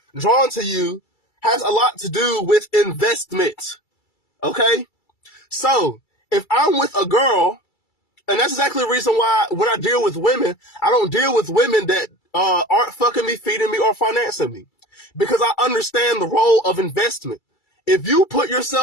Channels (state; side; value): late; right; 2.3 ms